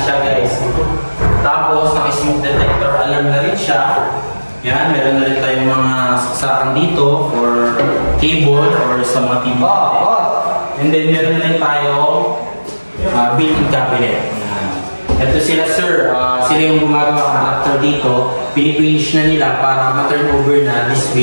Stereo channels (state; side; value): inverted; both; correlation -1.00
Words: siya guys. Tapos naka-smoke detector alarm na rin siya. Yan, meron na rin tayong mga saksakan dito for cable or sa mga TV. And then meron na rin tayong built-in cabinet. Ito sila sir, sila yung gumagawa ng contractor dito. Pinipinish na nila para ma-turn over na this